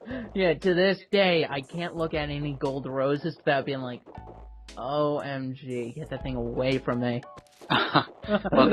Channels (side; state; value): both; identical; correlation 1.00